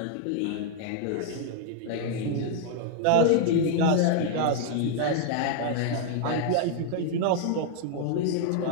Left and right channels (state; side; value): different; both; correlation 0.00